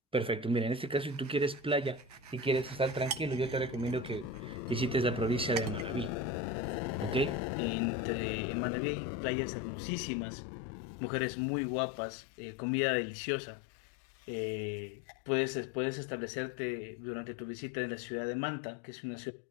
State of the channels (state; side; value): drops out; right; at 7.4 s